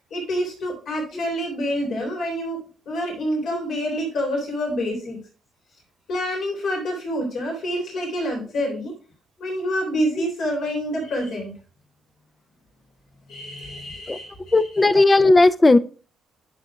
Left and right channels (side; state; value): both; normal; correlation 0.87